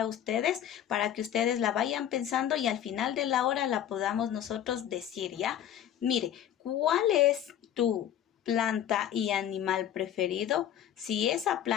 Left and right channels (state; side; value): quieter; right; 10.5 dB